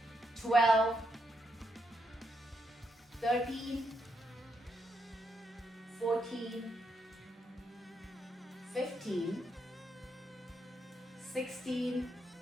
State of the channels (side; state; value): both; normal; correlation 0.79